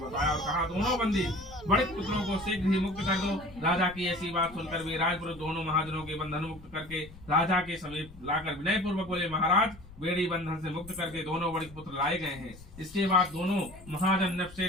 और कहा, दोनों बंदी बड़े पुत्रों को शीघ्र ही मुक्त कर दो। राजा की ऐसी बात सुनकर वे राजपुरुष दोनों महाजनों के बंधन मुक्त करके राजा के समीप लाकर विनय पूर्वक बोले, महाराज, बेड़ी बंधन से मुक्त करके दोनों बड़े पुत्र लाए गए हैं। इसके बाद दोनों महाजन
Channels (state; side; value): noise; left; rumble, 19 dB below the sound